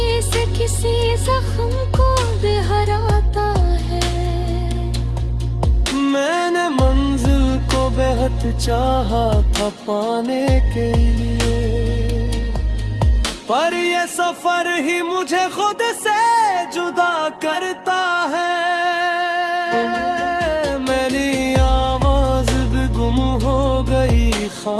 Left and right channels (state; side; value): identical; both; correlation 1.00